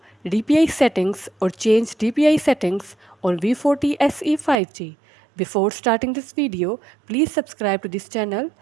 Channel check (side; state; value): left; drops out; at 4.5 s